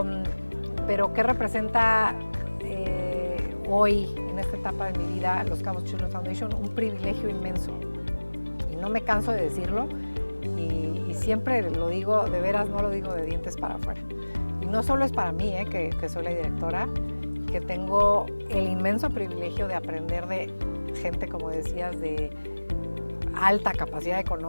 ¿qué representa hoy, en esta etapa de mi vida, Los Cabos Children's Foundation? Un privilegio inmenso. Y no me canso de decirlo y siempre lo digo, de veras no lo digo de dientes para afuera. Y no solo es para mí, que soy la directora, que tengo el inmenso privilegio de aprender de gente, como decías, de alta capacidad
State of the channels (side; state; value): both; inverted; correlation -1.00